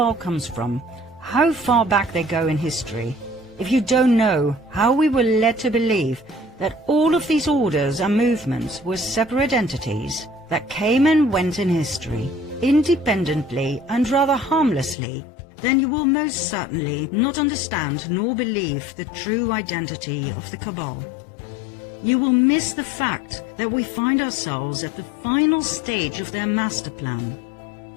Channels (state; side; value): drops out; right; at 15.0 s